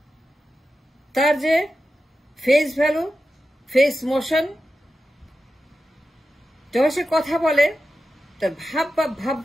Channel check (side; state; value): both; normal; correlation 0.91